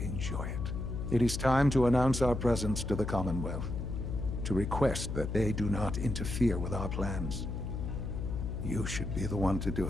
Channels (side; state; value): left; noise; hum, 4 dB below the sound